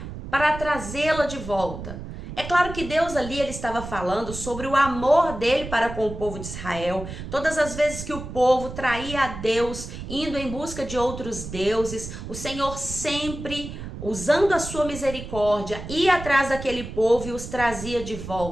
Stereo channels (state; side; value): noise; right; rumble, 10 dB below the sound